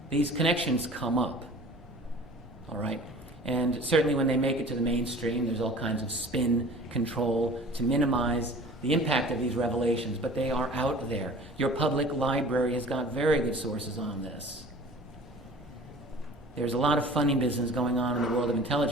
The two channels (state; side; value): normal; both; correlation 0.44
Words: These connections come up, all right? And certainly when they make it to the mainstream, there's all kinds of spin control to minimize the impact of these revelations, but they are out there. Your public library has got very good sources on this. There's a lot of funny business going on in the world of